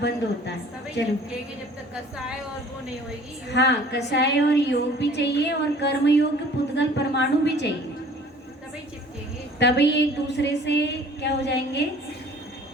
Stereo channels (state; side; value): normal; both; correlation 0.50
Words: बंद होता है। चलो, जब तक कसाय और वो नहीं होगी। हाँ, कषाय और योग भी चाहिए और कर्म योग पुद्गल परमाणु भी चाहिए, तभी चिपकेंगे। तभी एक दूसरे से क्या हो जाएंगे?